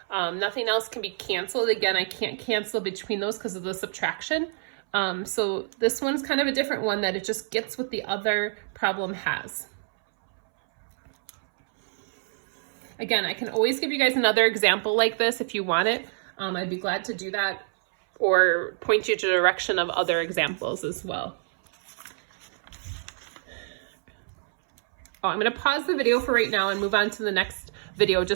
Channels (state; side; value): silent; left; 60 dB below the other